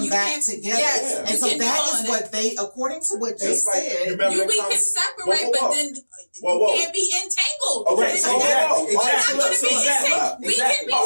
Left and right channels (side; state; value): both; inverted; correlation -1.00